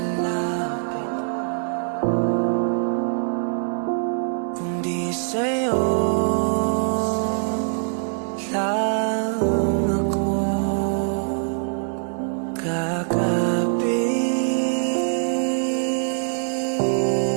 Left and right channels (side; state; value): left; silent; 63 dB below the other